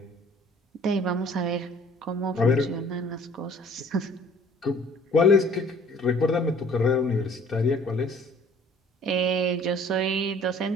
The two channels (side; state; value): both; normal; correlation 0.53